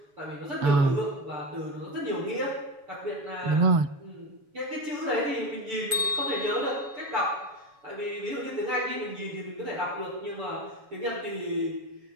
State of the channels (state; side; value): late; left; 7.0 ms